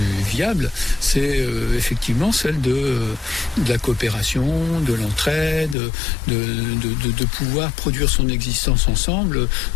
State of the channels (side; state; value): right; drops out; at 5.8 s